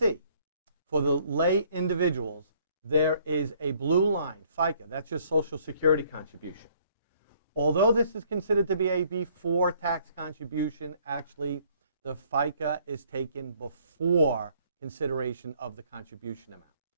for the lay individuals, there is a blue line, FICA, that's your Social Security contribution. Although this is considered to be a before tax contribution, actually the FICA is taken before consideration of the contribution amount.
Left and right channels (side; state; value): both; inverted; correlation -0.62